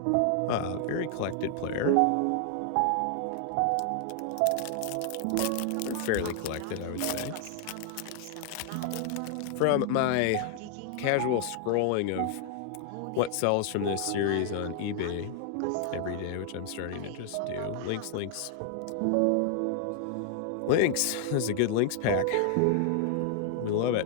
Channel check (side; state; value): both; different; correlation 0.00